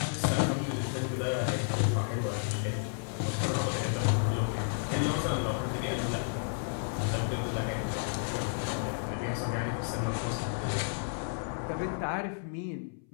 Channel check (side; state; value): right; silent; 56 dB below the other